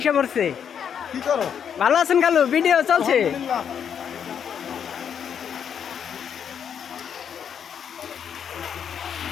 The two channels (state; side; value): quieter; right; 8.0 dB